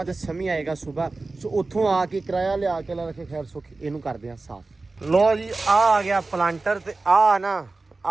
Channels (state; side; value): quieter; left; 3.5 dB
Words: ਤੇ ਸਮੀ ਆਏਗਾ ਸੁਬਾ। ਸੋ ਉੱਥੋਂ ਆ ਕੇ ਕਿਰਾਇਆ ਲਿਆ ਕੇ ਲਾ ਰੱਖੇ ਖੈਰ ਸੁੱਖ, ਇਹਨੂੰ ਕਰਦੇ ਆ ਸਾਫ਼। ਲੋ ਜੀ ਆ ਗਿਆ ਪਲਾਂਟਰ ਤੇ ਆ ਨਾ